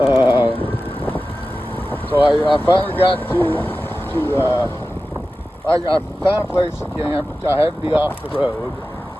So I finally got I found a place to camp. I had to be off the road.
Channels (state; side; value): normal; both; correlation 0.94